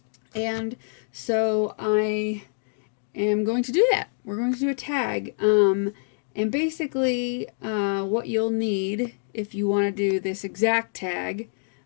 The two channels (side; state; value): right; silent; digital silence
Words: and so I am going to do that. We're going to do a tag, and basically, what you'll need if you want to do this exact tag.